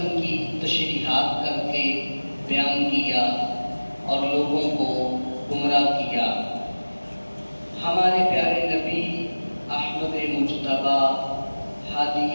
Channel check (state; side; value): inverted; both; correlation -1.00